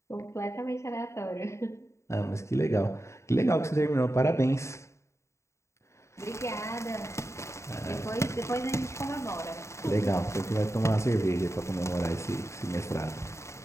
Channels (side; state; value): right; late; 0.14 ms